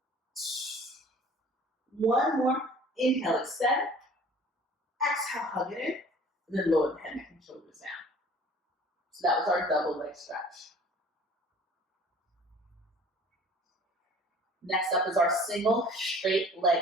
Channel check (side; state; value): both; normal; correlation 0.49